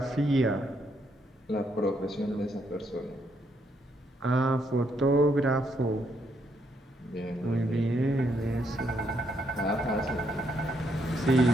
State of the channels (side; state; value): both; normal; correlation 0.75